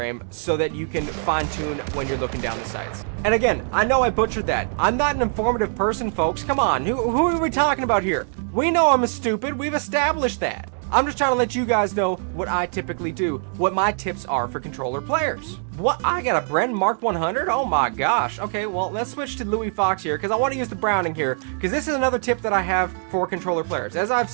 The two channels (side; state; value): left; silent; digital silence